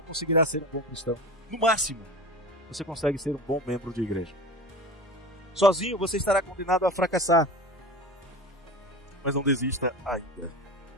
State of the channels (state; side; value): normal; both; correlation 0.31